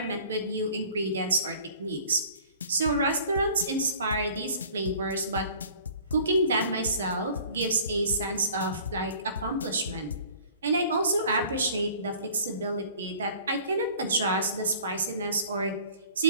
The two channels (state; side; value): inverted; both; correlation -0.50